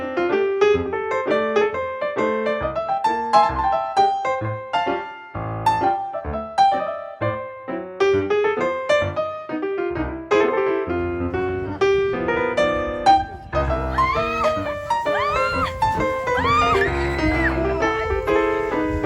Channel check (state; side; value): identical; both; correlation 1.00